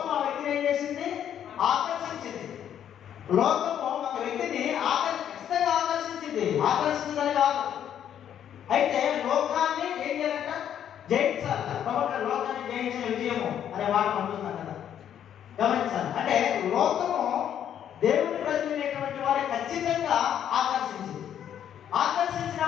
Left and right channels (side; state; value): right; quieter; 9.7 dB